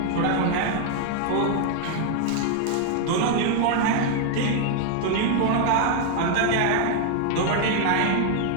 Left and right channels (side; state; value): both; different; correlation 0.00